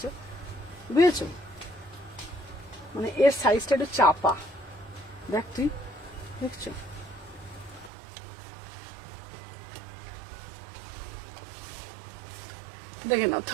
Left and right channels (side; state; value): left; drops out; at 7.9 s